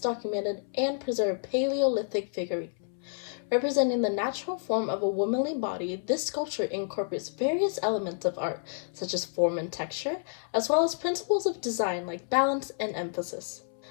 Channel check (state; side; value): silent; right; 58 dB below the other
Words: documented and preserved Paleolithic figurine. Representing the natural form of a womanly body, this sculpture incorporates various elements of art, such as form and texture, as well as principles of design like balance and emphasis.